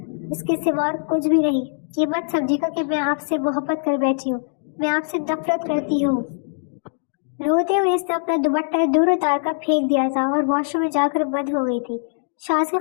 اس کے سوا اور کچھ بھی نہیں۔ یہ مت سمجھے گا کہ میں آپ سے محبت کر بیٹھی ہوں، میں آپ سے نفرت کرتی ہوں۔ روتے ہوئے اس نے اپنا دوپٹہ دور اتار کر پھینک دیا تھا اور واش روم میں جا کر بند ہو گئی تھی۔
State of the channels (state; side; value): silent; right; digital silence